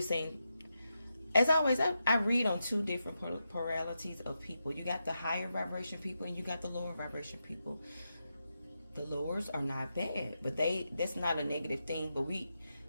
saying, as always, I read on two different polarities of people. You got the higher vibration people, and you got the lower vibration people. The lowers are not bad, but that's not a negative thing. But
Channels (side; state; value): both; inverted; correlation -0.87